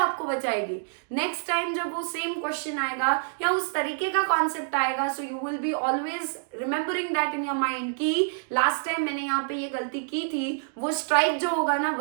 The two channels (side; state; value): left; silent; digital silence